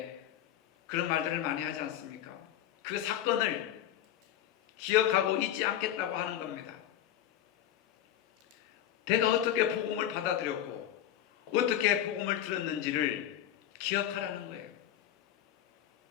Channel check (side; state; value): right; quieter; 11.5 dB